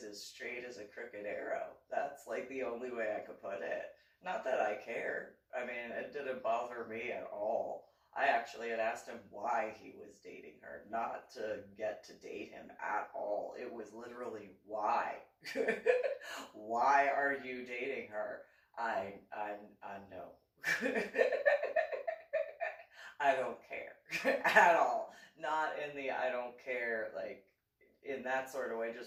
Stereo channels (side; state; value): both; identical; correlation 1.00